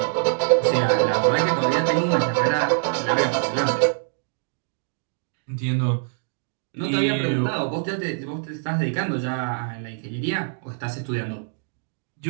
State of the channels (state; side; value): silent; left; digital silence